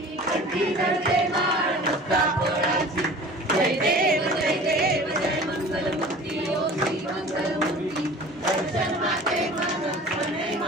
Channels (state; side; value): normal; both; correlation 0.42